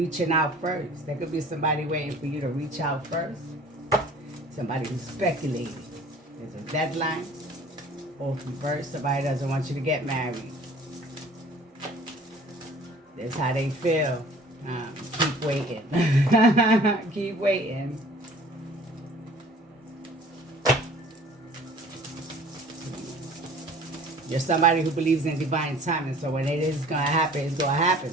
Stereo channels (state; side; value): normal; both; correlation 0.49